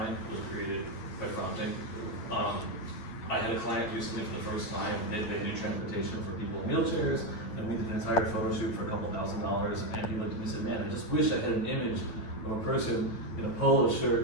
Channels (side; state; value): right; late; 8.9 ms